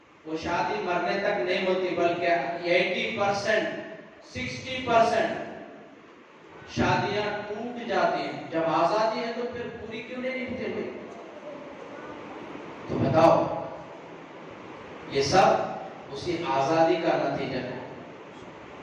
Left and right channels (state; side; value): identical; both; correlation 1.00